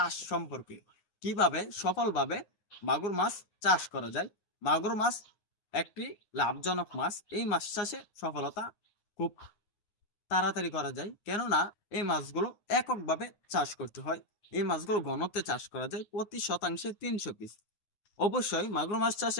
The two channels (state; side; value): late; right; 9.6 ms